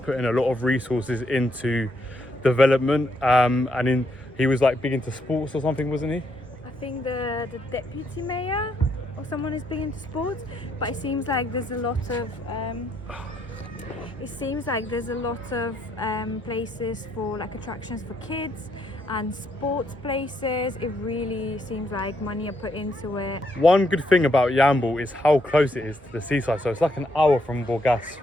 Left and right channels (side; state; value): both; normal; correlation 0.75